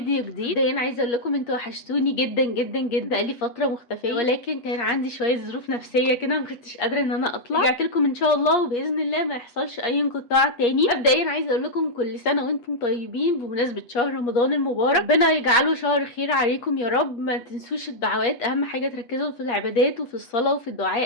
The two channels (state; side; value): late; right; 8.5 ms